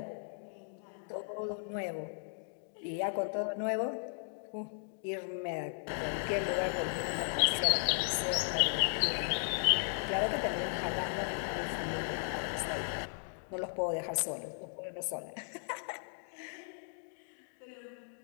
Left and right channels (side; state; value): right; silent; digital silence